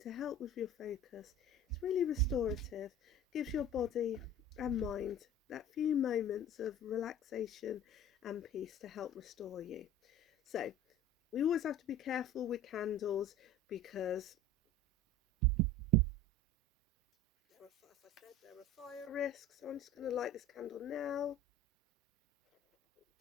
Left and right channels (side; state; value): both; normal; correlation 0.40